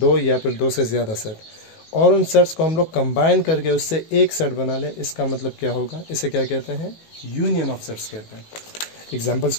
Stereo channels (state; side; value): late; right; 18 ms